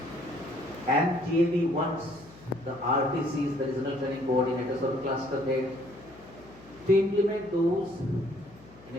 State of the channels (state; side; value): noise; left; hum, 23 dB below the sound